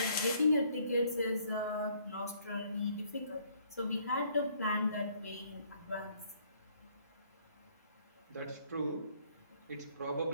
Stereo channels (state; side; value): inverted; both; correlation -0.64